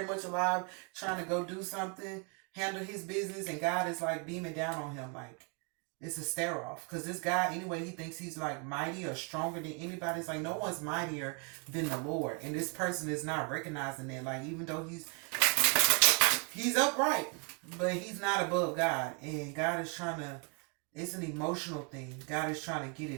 much alive, trying to go do something, handle his business, and God is like beaming down on him like it's a stare off. Because this guy, anyway, he thinks he's like mighty or stronger than anybody. It's like no one's mightier than the Lord. And this person is not recognizing that. Like, even though he's upright, but he's not above God. And God is trying to, it's an emotional thing. God is trying to get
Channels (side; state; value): left; quieter; 35.8 dB